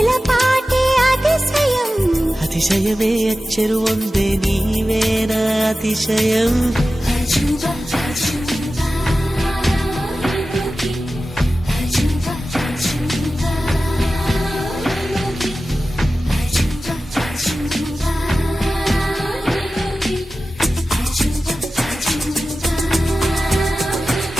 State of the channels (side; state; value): both; normal; correlation 0.95